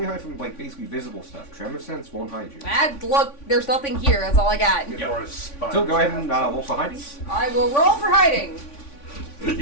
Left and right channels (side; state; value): right; late; 3.5 ms